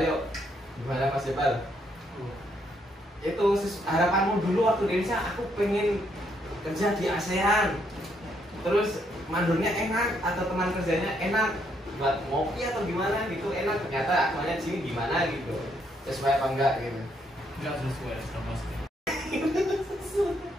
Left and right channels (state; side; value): normal; both; correlation 0.73